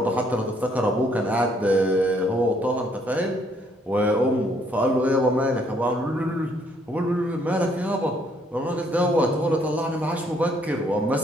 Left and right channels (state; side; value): normal; both; correlation 0.68